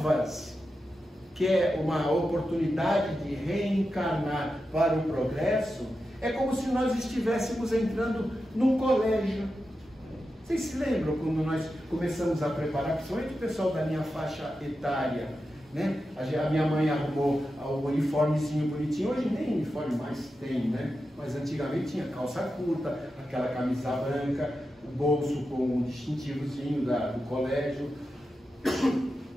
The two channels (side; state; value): both; normal; correlation 0.90